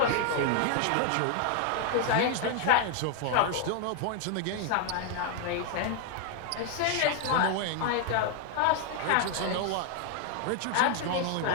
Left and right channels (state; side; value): different; both; correlation 0.00